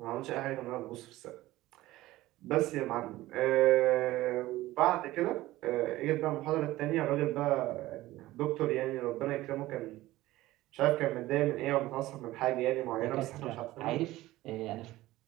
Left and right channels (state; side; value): quieter; left; 17.0 dB